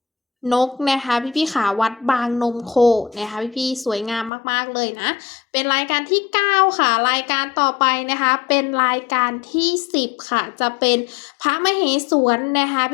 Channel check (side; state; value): right; drops out; at 4.3 s